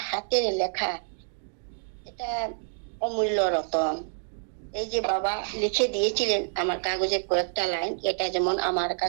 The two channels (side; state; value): left; silent; digital silence